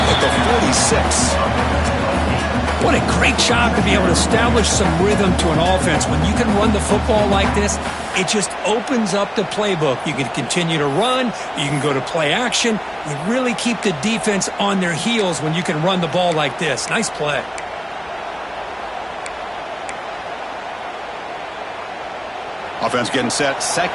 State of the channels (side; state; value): both; identical; correlation 1.00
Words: at the 46. What a great job to be able to establish some rhythm to an offense. When you can run the football like this, it just opens up the playbook. You can continue to run. You can go to play action. You really keep the defense on their heels when you can run the ball like this. Nice play. Offense getting set.